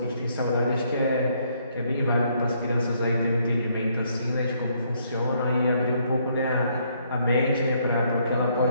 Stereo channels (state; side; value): inverted; both; correlation -0.70